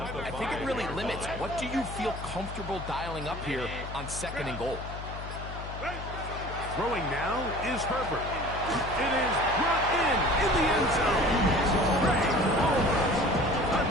think it really limits. What do you feel comfortable dialing up here on 2nd and goal? Throwing now is Herbert. It is brought in the end zone. Great over.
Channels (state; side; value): noise; left; hum, 9 dB below the sound